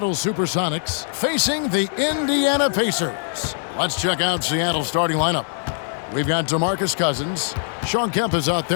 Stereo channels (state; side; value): silent; right; 64 dB below the other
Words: Supersonics facing the Indiana Pacers. Let's check out Seattle's starting lineup. We've got DeMarcus Cousins. Shawn Kemp is out